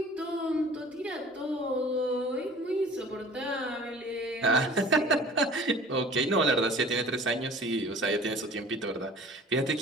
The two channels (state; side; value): normal; both; correlation 0.46